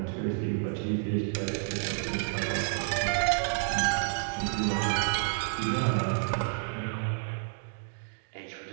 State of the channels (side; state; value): left; silent; digital silence